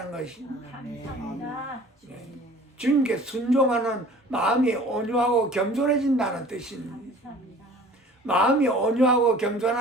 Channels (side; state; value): both; normal; correlation 0.47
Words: 것이. 주님께 순종하는 마음이 온유하고 겸손해진다는 뜻입니다. 마음이 온유하고